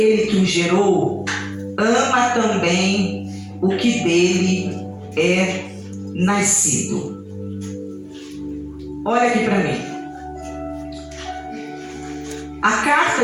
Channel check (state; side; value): identical; both; correlation 1.00